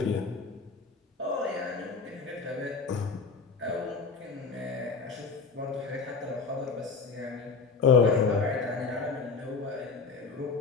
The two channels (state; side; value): quieter; right; 4.7 dB